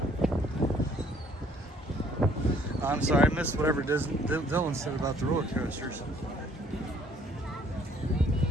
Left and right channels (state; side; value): normal; both; correlation 0.61